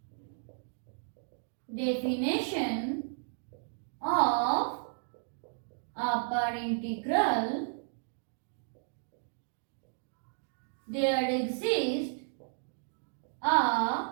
definition of upper integral, there exists a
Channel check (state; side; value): silent; left; digital silence